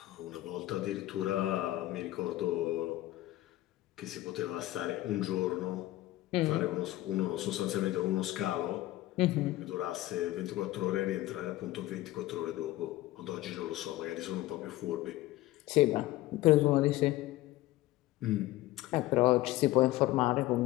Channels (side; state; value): right; quieter; 16.6 dB